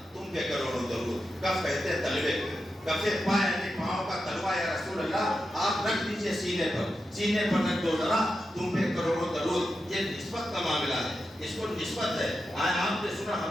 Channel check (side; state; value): both; normal; correlation 0.89